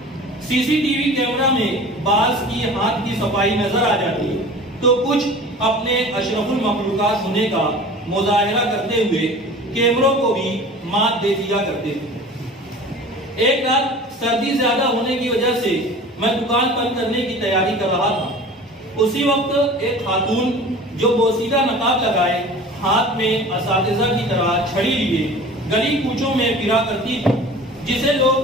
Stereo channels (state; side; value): normal; both; correlation 0.41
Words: سی سی ٹی وی کیمرہ میں بعض کی ہاتھ کی صفائی نظر آ جاتی تو کچھ اپنے اشرف المخلوقات ہونے کا مظاہرہ کرتے ہوئے کیمروں کو بھی مات دے دیا کرتے تھے۔ ایک رات سردی زیادہ ہونے کی وجہ سے میں دکان بند کرنے کی تیاری کر رہا تھا اسی وقت ایک خاتون جو بوسیدہ نقاب لگائے ہاتھ میں اساتذہ کی طرح چھڑی لیے گلی کوچوں میں پھرا کرتی تھی، جسے